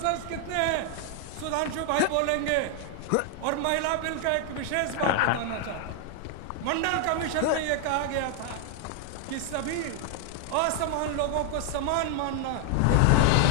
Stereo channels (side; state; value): both; different; correlation 0.00